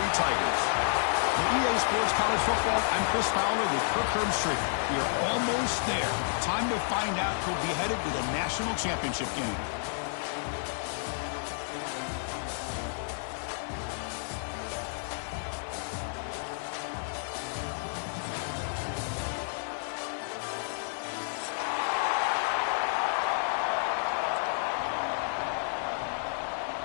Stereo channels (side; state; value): right; silent; 57 dB below the other